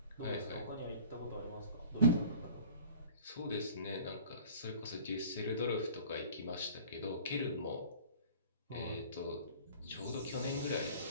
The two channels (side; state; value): both; inverted; correlation -0.46